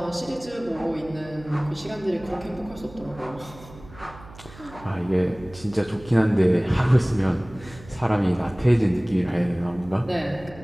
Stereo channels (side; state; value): right; noise; hum, 19 dB below the sound